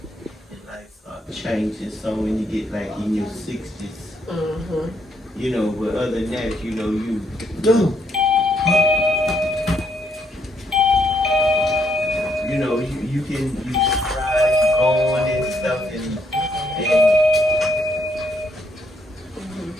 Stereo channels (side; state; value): both; normal; correlation 0.73